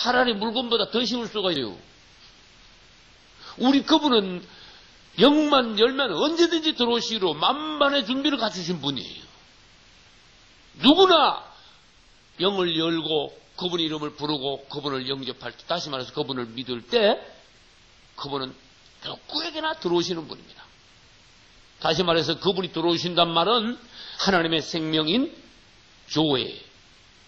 물건보다 더 쉬울 수가 있어요. 우리 그분은 영만 열면 언제든지 들어오시기로 만반의 준비를 갖추신 분이에요. 누구나 영을 열고 그분의 이름을 부르고 그분을 영접할 때, 다시 말해서 그분을 믿을 때 그분은 누구에게나 들어오시는 분입니다. 다시 말해서 그분이 들어오신단 말은 하나님의 생명인 조회,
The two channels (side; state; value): both; identical; correlation 1.00